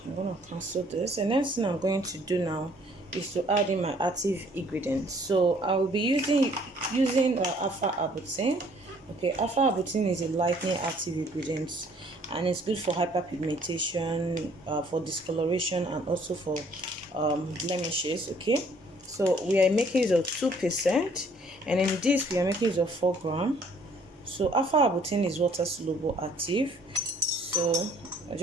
I'm going to cancel this. And next thing I'm going to do now is to add in my active ingredients. So I will be using alpha arbutin. Okay, alpha arbutin is a lightening active ingredient, and it's good for hyperpigmentation, for discoloration, and also for blemishes, okay? So we are making use of 2%, and in this we are making use of 4 gram. So alpha arbutin is water soluble active, so I'm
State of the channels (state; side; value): normal; both; correlation 0.60